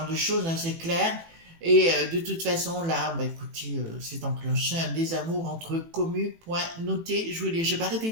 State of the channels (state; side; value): late; left; 18 ms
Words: de choses, hein, c'est clair. Et de toute façon là, bah écoutez, c'est enclenché un désamour entre communes, point noté, je vous lis, j'ai pas arrêté